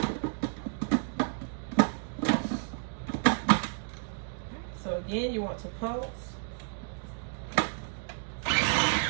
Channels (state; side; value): silent; left; digital silence